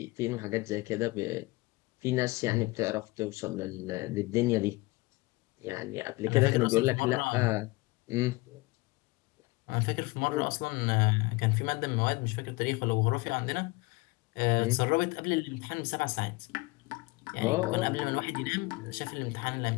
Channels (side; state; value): right; quieter; 23.2 dB